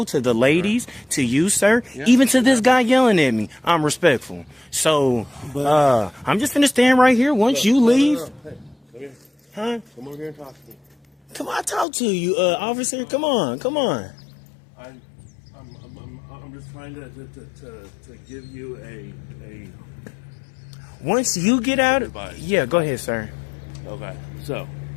to the ladies, to you, sir. Yeah. Even to this guy yelling at me. I'm respectful. So, I'm just gonna stand right here once you leave. Hey, come here. Huh? Come over here and talk to me. Come on, I talk to you, officer. Come on. I'm just trying to give you a. Once you get out, advice. Yeah, go ahead, sir. Okay, so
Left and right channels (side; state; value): right; drops out; at 11.9 s